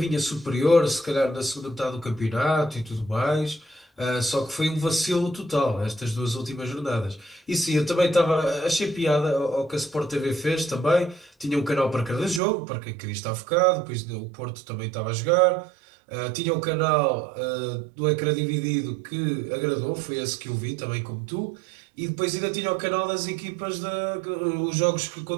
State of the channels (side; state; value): left; drops out; at 12.4 s